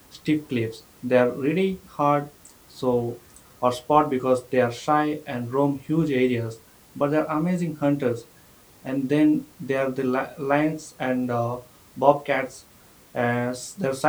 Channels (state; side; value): identical; both; correlation 1.00